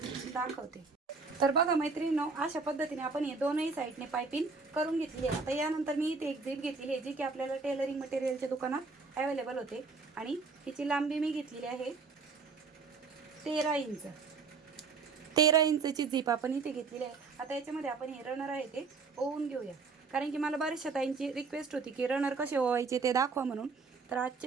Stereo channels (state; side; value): quieter; left; 4.6 dB